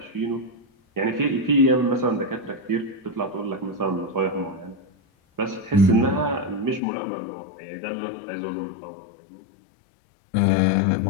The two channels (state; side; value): drops out; right; at 6.8 s